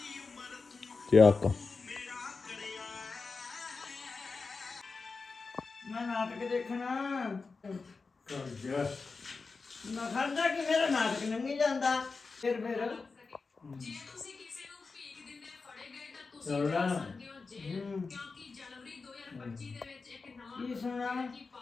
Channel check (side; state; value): right; quieter; 4.4 dB